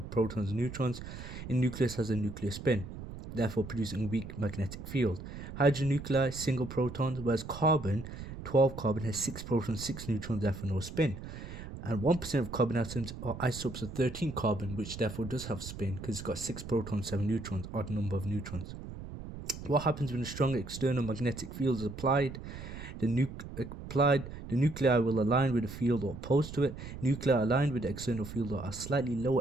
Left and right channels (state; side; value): noise; right; rumble, 10 dB below the sound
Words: protons and neutrons, in nucleus has a nuclear spin, therefore producing a weak magnetic field. Hydrogen nuclei, single protons, whereas carbon, 12 carbon, has 6 protons, 6 neutrons, therefore no spin. And 1% of carbon atoms are isotopes of 13 carbon, which therefore does have spin because it's got 6 protons, 7 neutrons, odd number of neutrons. What happens when a strong external magnetic field is applied? The nuclei will align with the field or opposed to it. Nuclei aligned with the external field are slightly